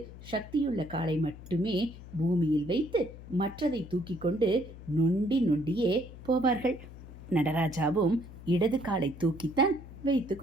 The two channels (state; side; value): noise; left; hum, 15 dB below the sound